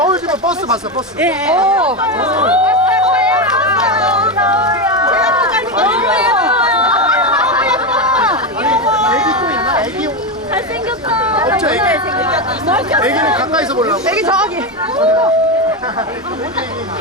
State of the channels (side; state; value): both; normal; correlation 0.13